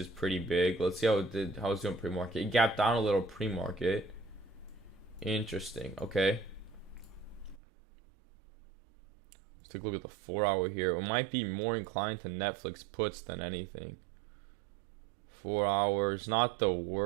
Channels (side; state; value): left; drops out; at 7.6 s